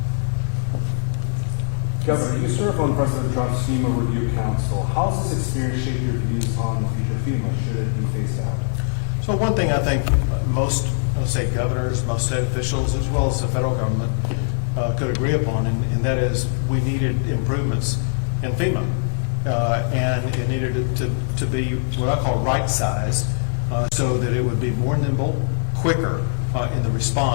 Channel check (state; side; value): silent; right; 59 dB below the other